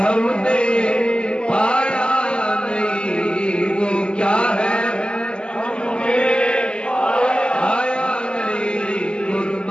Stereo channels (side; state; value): right; late; 0.051 ms